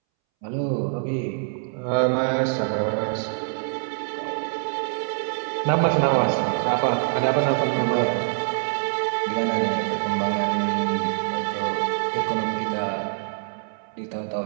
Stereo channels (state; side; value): silent; left; 62 dB below the other